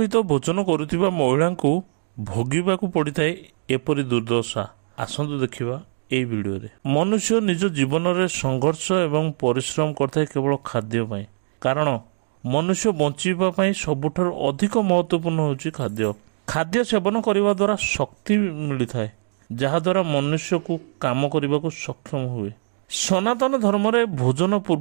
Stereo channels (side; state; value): left; silent; digital silence